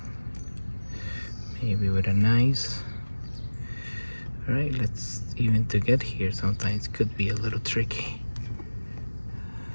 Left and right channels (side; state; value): both; inverted; correlation -1.00